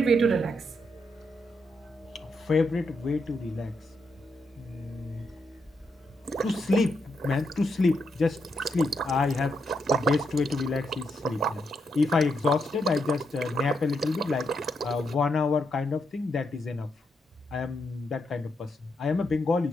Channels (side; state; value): both; normal; correlation 0.81